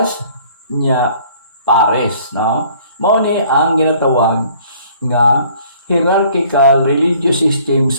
nya Paris, no? Mao ni ang ginatawag nga hierarchical religious system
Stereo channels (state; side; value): inverted; both; correlation -0.57